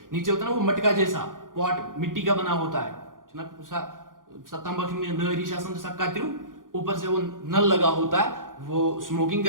नीचे होता है ना, वो मटका जैसा, पॉट मिट्टी का बना होता है ना, तंबाकू में नरी शासन जैसा कातिरू, ऊपर से वो नल लगा होता है, वो स्मोकिंग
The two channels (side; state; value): left; late; 0.90 ms